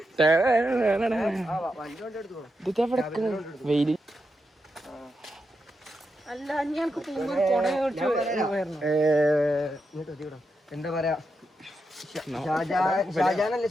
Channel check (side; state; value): both; normal; correlation 0.86